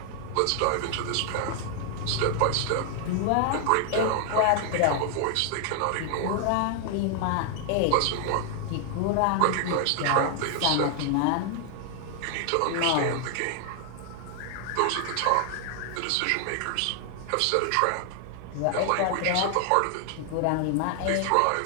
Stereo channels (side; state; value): both; different; correlation 0.00